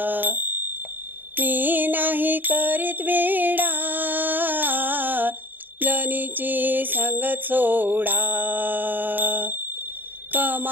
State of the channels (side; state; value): left; late; 0.089 ms